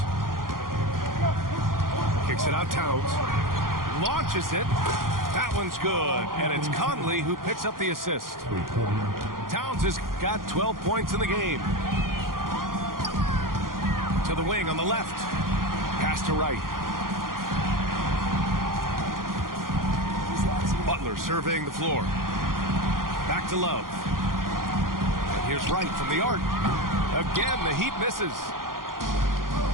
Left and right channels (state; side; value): late; left; 0.91 ms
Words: Kicks it out, Towns. Launches it. That one's good. And it's Conley who picks up the assist. Towns has got 12 points in the game. To the wing on the left. Pass to Wright. Butler surveying the floor. Back to Love. And here's Wright from the arc. Again, the Heat misses.